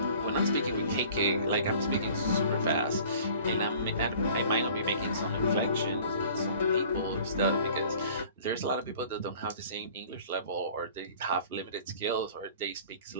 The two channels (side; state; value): both; inverted; correlation -0.48